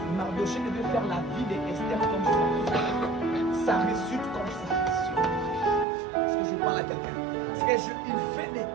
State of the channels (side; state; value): left; drops out; at 5.9 s